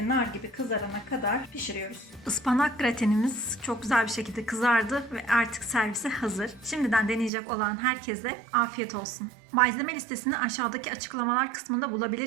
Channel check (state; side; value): drops out; left; at 7.3 s